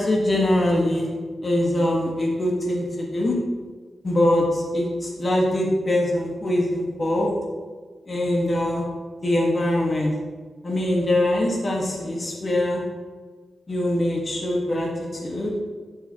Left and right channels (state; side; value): normal; both; correlation 0.90